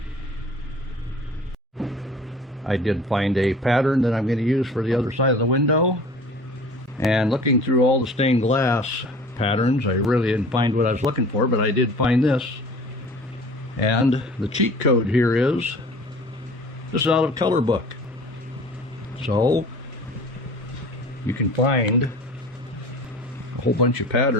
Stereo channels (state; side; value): normal; both; correlation 0.44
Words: I did find a pattern that I'm going to use for the other side of the window, and looking through all the stained glass patterns, I really didn't find what I was looking for, but I did find this. And the cheat code here is, this is out of color book. So you can find a whole bunch of